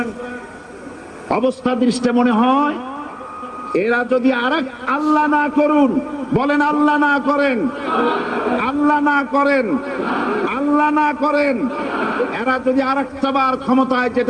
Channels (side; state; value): both; identical; correlation 1.00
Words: অবস্থা দৃষ্টে মনে হয় এরা যদি আরেক আল্লাহ না করুন, বলেন আল্লাহ না করেন, আল্লাহ না করেন, আল্লাহ না করেন, এরা যদি আরেকটাবার ক্ষমতায়